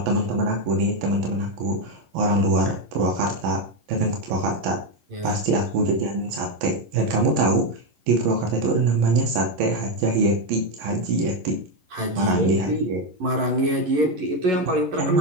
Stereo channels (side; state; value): left; late; 11 ms